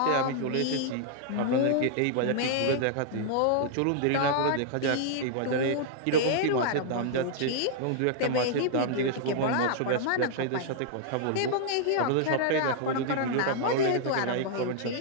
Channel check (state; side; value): different; both; correlation -0.01